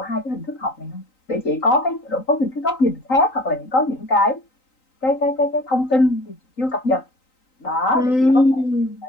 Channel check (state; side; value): late; right; 3.9 ms